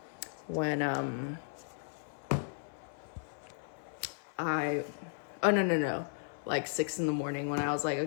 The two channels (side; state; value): right; silent; 54 dB below the other